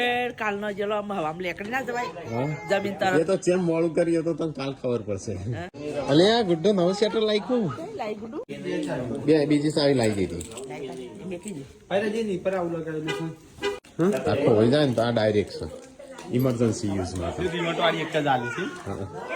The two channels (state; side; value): identical; both; correlation 1.00